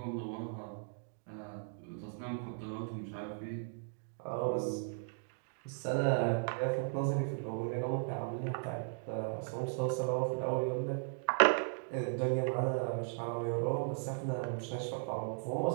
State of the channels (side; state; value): left; silent; digital silence